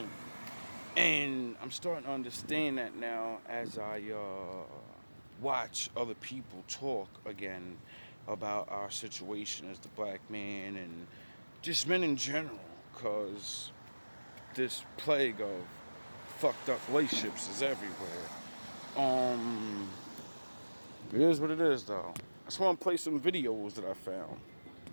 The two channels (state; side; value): inverted; both; correlation -1.00